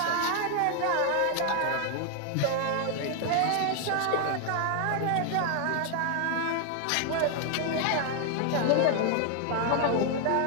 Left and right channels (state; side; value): different; both; correlation 0.00